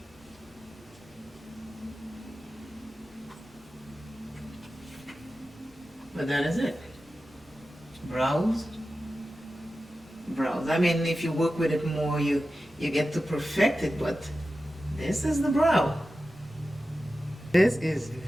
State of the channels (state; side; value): normal; both; correlation 0.93